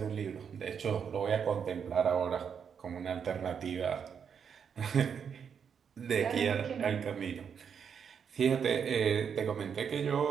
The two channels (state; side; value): quieter; left; 7.2 dB